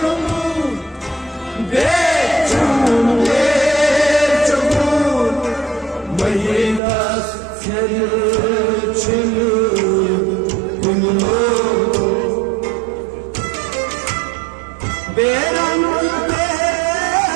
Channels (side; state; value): left; drops out; at 6.8 s